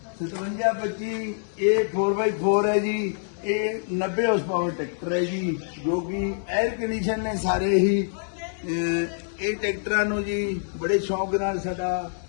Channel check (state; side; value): silent; right; digital silence